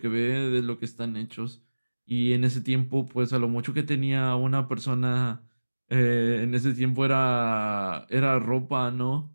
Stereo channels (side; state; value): both; inverted; correlation -1.00